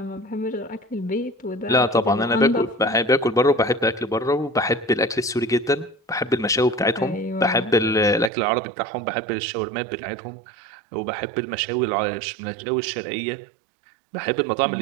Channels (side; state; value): left; drops out; at 8.3 s